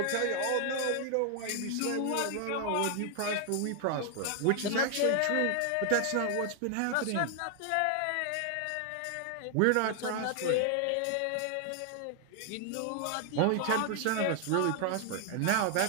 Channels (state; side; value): different; both; correlation 0.00